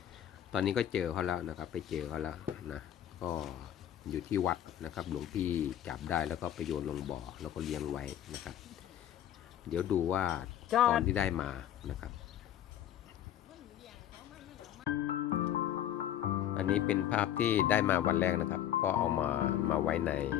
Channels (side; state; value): right; quieter; 11.2 dB